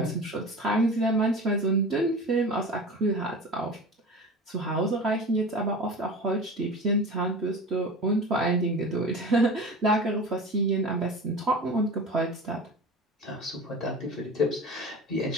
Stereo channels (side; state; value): both; normal; correlation 0.34